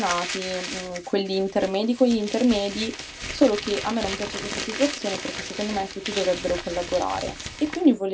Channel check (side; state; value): both; identical; correlation 1.00